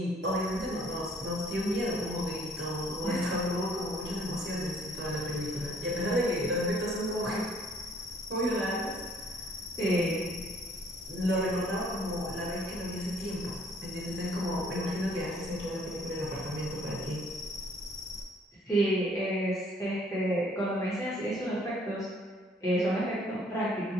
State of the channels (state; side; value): normal; both; correlation 0.60